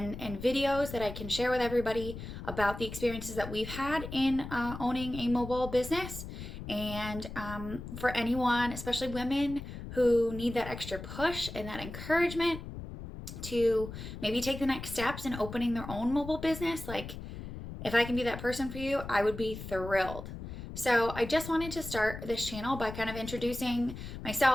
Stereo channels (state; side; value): noise; left; rumble, 10 dB below the sound